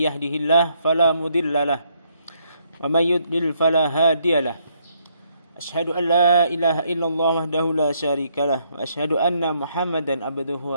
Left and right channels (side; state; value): both; inverted; correlation -0.72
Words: yahdihillahu fala mudhillalah wa may yudlil fala hadiyalah. Asyhadu an la ilaha illallah wahdahu la syarikalah wa asyhadu anna Muhammadan abduhu